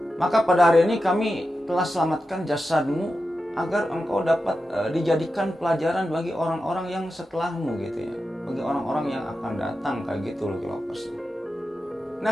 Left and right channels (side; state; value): both; normal; correlation 0.91